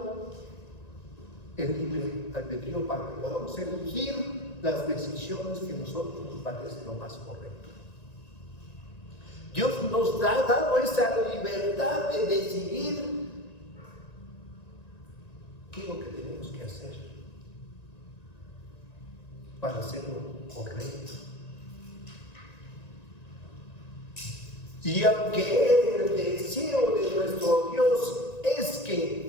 el libre albedrío para que podamos elegir las decisiones que a nosotros nos parece lo más correcto. Dios nos ha dado esa libertad de decidir qué es lo que tenemos que hacer para hacerlo correcto. Y aunque el deseo de nuestro Dios es que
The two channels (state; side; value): late; right; 1.9 ms